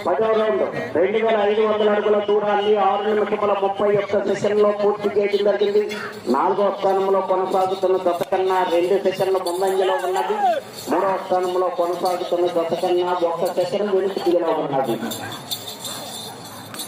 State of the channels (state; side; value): identical; both; correlation 1.00